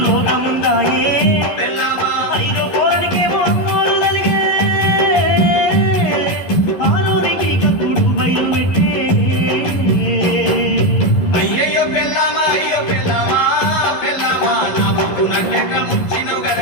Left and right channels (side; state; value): right; late; 11 ms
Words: రోగముందాయే ఐదో పోరనికేమో అమ్మోరు తలిగే ఆరోనికి కక్కుడు బయలు పెట్టే అయ్యయ్యో పెళ్ళామా అయ్యో పెళ్ళామా పెళ్ళామా నా బొక్కునంటెట్ల ముంచినవు